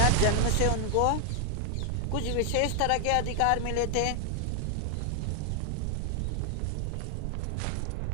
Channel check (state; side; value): different; both; correlation 0.00